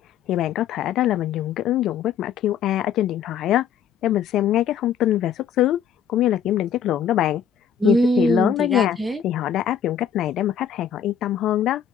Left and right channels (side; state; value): right; quieter; 8.0 dB